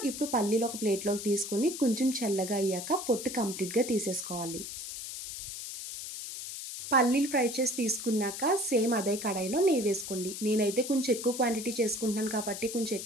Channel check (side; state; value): left; noise; hiss, 8 dB below the sound